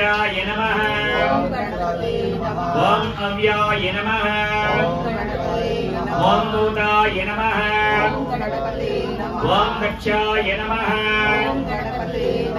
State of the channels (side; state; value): both; identical; correlation 1.00